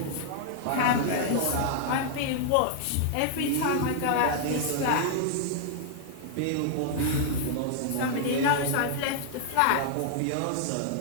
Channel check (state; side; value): different; both; correlation -0.01